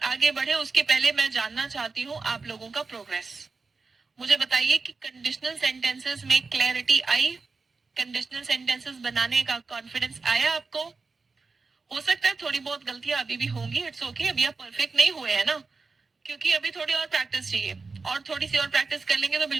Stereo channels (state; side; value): quieter; left; 4.2 dB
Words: आगे बढ़े उसके पहले मैं जानना चाहती हूँ आप लोगों का प्रोग्रेस. मुझे बताइए कि कंडीशनल सेंटेंसेस में क्लैरिटी आई? कंडीशनल सेंटेंसेस बनाने का कॉन्फिडेंस आया आपको? हो सकता है थोड़ी बहुत गलतियां अभी भी होंगी, इट्स ओके. अभी आप परफेक्ट नहीं हुए हैं ना, क्योंकि अभी थोड़ी और प्रैक्टिस चाहिए, और थोड़ी सी और प्रैक्टिस कर लेंगे तो